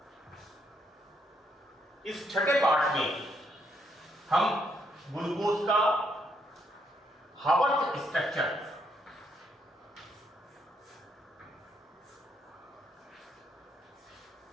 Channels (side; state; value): both; normal; correlation 0.74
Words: इस छठे पार्ट में हम ग्लूकोज का हावर्थ स्ट्रक्चर